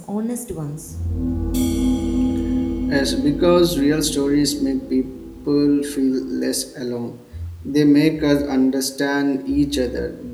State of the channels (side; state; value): both; identical; correlation 1.00